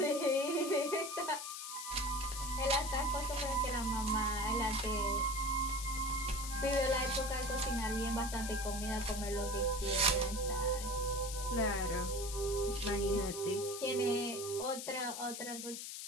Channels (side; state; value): left; noise; hiss, 7 dB below the sound